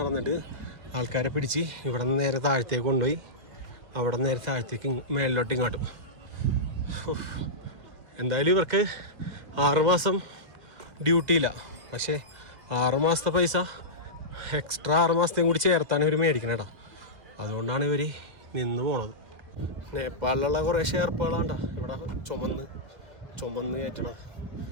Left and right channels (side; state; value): left; late; 2.0 ms